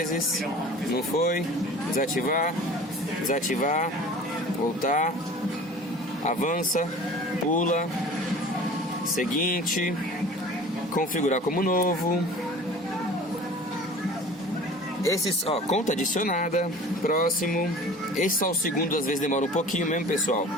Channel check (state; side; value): normal; both; correlation 0.42